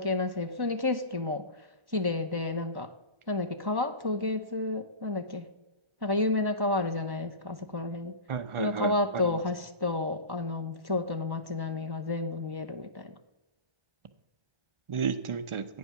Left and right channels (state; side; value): late; left; 1.1 ms